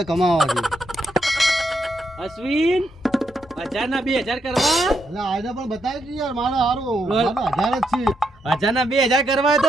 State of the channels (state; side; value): normal; both; correlation 0.80